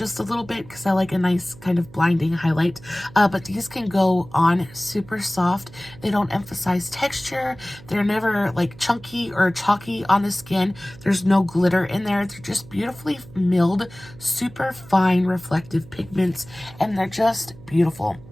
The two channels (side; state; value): right; noise; hum, 20 dB below the sound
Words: a little bit because I like a nice kind of blinding highlight. But these can go on super soft. They don't emphasize texture. They're never like chunky or chalky on the skin. There's no glitter in there. They're just beautifully milled, super fine reflective pigments, and they're just beautiful.